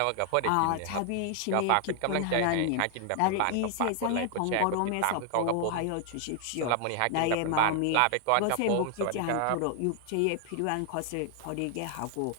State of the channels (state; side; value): different; both; correlation 0.00